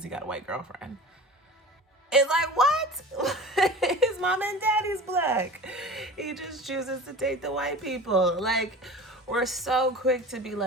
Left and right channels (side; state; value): both; normal; correlation 0.37